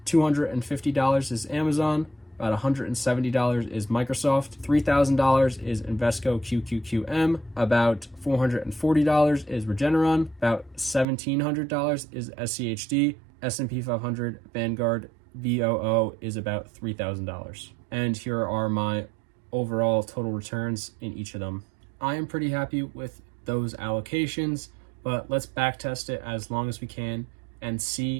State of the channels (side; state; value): left; drops out; at 11.1 s